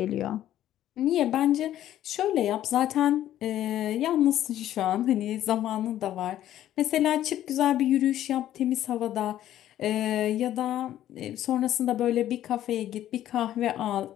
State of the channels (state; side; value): quieter; right; 12.4 dB